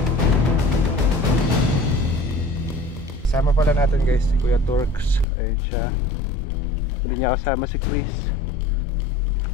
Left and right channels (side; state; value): right; drops out; at 5.2 s